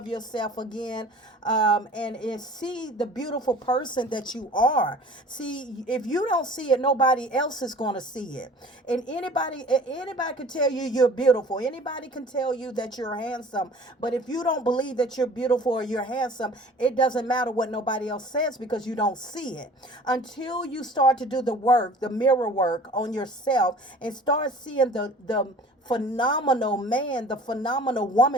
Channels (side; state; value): both; normal; correlation 0.46